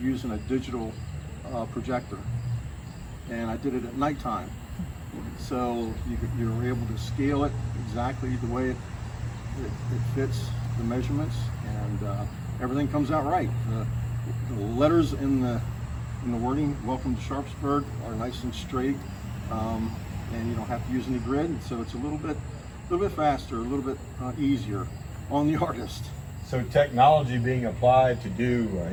using a digital projector. And I did it at nighttime. So you were able to scale it exactly the way it fits the measurements, and everything comes out right. The letters in the wording, "Welcome to Sharpsburg," are nice and straight. And you don't have to use any grid, so it's a little bit faster, a little bit easier on the artist. So technology being applied to do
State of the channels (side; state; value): both; identical; correlation 1.00